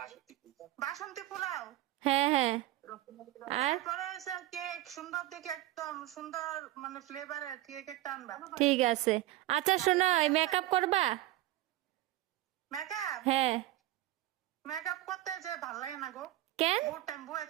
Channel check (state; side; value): quieter; left; 15.4 dB